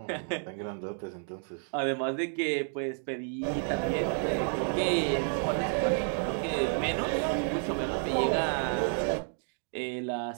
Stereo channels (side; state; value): left; silent; 56 dB below the other